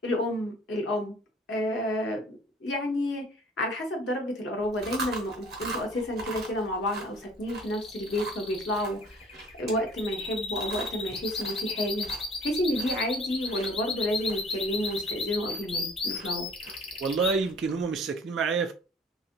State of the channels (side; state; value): both; normal; correlation 0.51